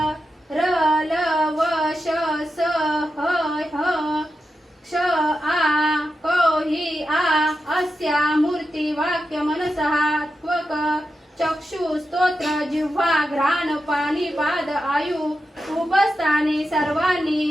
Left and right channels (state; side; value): normal; both; correlation 0.89